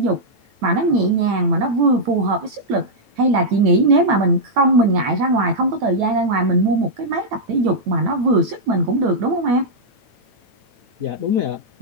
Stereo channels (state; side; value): late; left; 9.0 ms